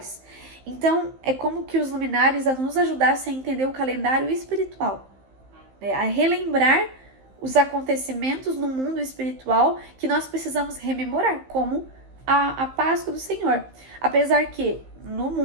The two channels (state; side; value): late; left; 15 ms